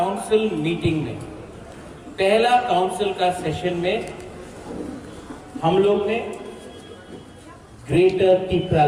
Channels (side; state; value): both; identical; correlation 1.00